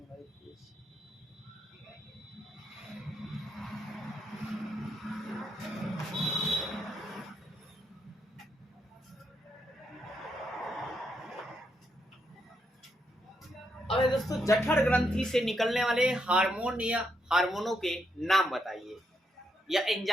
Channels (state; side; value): normal; both; correlation 0.79